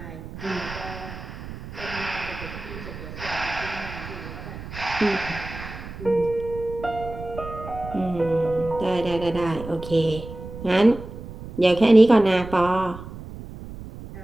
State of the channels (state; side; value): noise; right; rumble, 12 dB below the sound